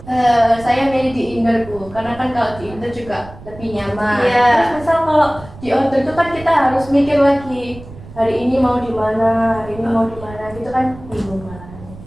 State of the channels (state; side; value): noise; right; rumble, 17 dB below the sound